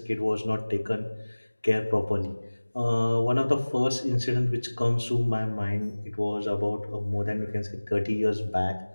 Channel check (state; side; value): inverted; both; correlation -1.00